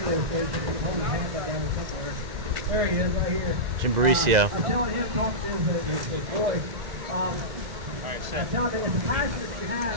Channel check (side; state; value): left; late; 2.0 ms